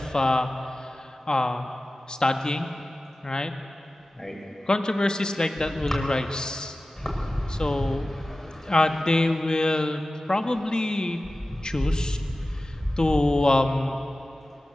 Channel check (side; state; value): both; normal; correlation 0.96